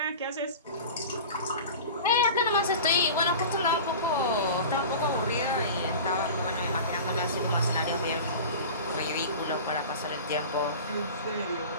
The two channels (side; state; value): both; inverted; correlation -0.35